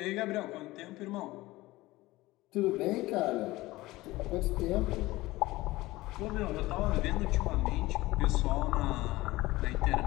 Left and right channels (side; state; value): right; quieter; 19.0 dB